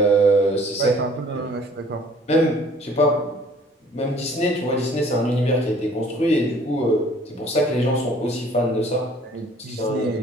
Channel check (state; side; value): normal; both; correlation 0.55